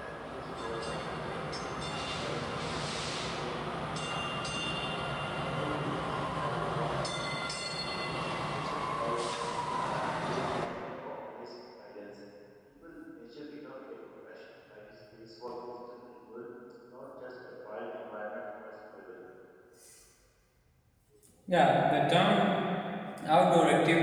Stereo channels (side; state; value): both; identical; correlation 1.00